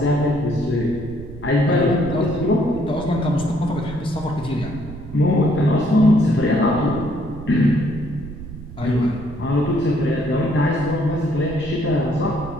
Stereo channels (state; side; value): noise; right; rumble, 13 dB below the sound